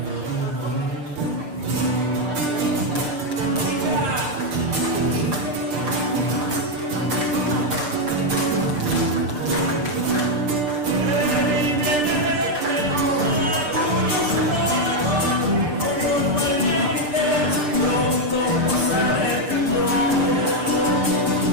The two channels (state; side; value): late; left; 6.7 ms